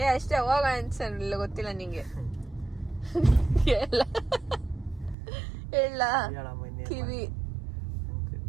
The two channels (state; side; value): drops out; left; at 5.2 s